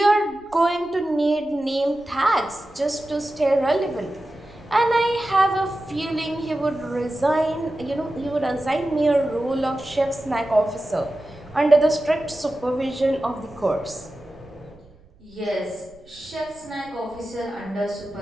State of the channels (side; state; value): right; noise; rumble, 27 dB below the sound